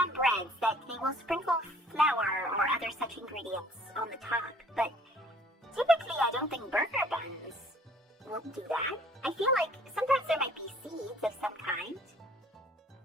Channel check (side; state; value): both; normal; correlation 0.56